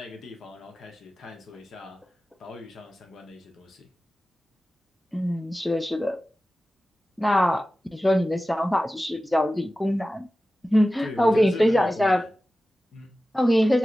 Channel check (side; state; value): both; normal; correlation 0.95